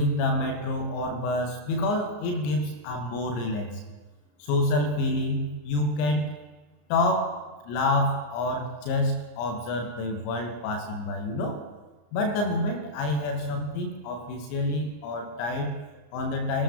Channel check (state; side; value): late; right; 34 ms